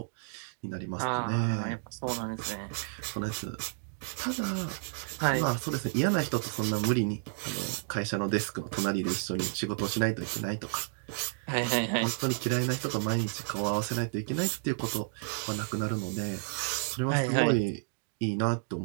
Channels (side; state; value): left; silent; digital silence